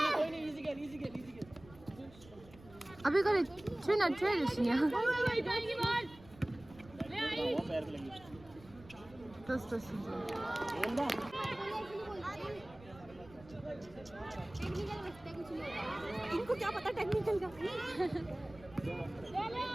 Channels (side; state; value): right; noise; rumble, 21 dB below the sound